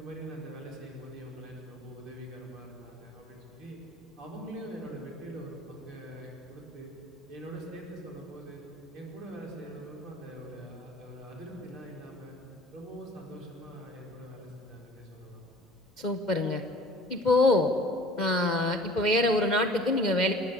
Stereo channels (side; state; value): both; normal; correlation 0.47